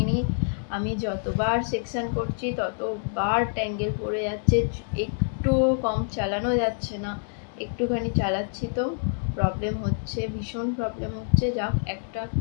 আমি যতবার সেকশন করছি ততবার ট্যাঙ্গেল পড়ে যাচ্ছে, একটুও কম চালানো যাচ্ছে না। একটুখানি চালাচ্ছি তো প্রবলেম হচ্ছে, ভীষণ প্রবলেম হচ্ছে। যাক, একটা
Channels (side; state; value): right; silent; 60 dB below the other